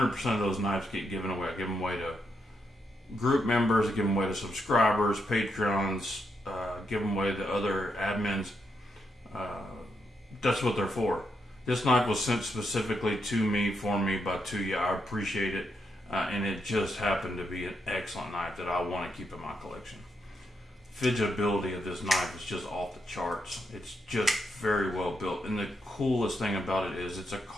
of those knives get given away. I give them away to group members, I give them away to subscribers, Patreons, give them away to other admins. That's what they're for. This knife was sent specifically to me, for me, by Tuya. I appreciate it, and it just happened to be an excellent knife that I want to keep in my collection. Fidgetability of this knife is just off the charts. It's just very well built, and the coolest thing about it is it's a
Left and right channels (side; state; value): both; normal; correlation 0.81